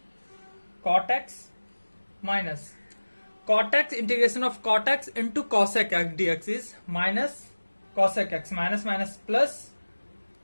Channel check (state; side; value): inverted; both; correlation -1.00